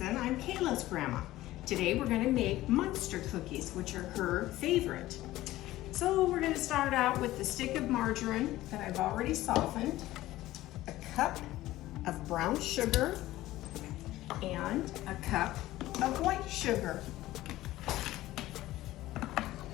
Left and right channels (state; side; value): quieter; right; 16.1 dB